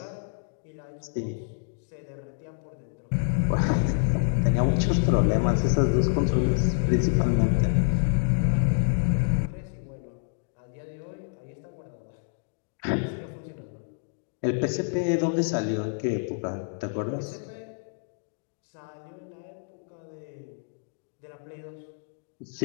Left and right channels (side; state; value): right; silent; digital silence